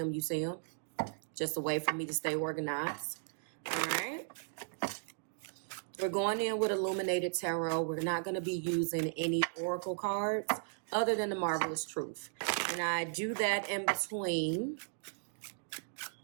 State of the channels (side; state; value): left; silent; digital silence